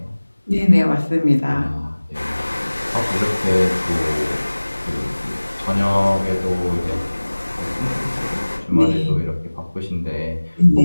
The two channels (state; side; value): inverted; both; correlation -1.00